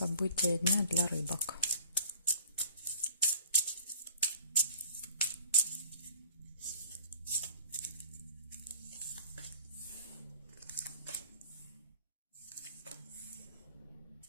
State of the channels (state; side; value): inverted; both; correlation -0.51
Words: дня для рыбок.